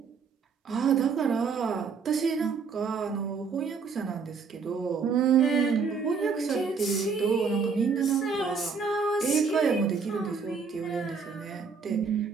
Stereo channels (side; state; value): left; quieter; 5.4 dB